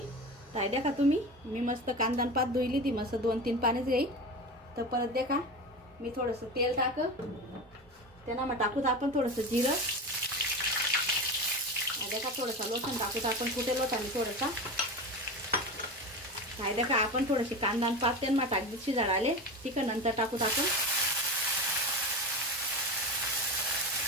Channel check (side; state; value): both; normal; correlation 0.26